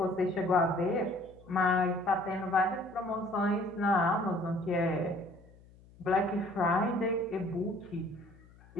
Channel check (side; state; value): left; noise; hum, 25 dB below the sound